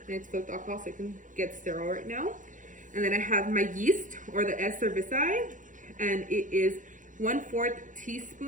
And it's filled with alcohol so it can get sterile right now. And then I have my yeast, or the S. cerevisiae, and it is 1/4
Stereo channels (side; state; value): left; late; 0.37 ms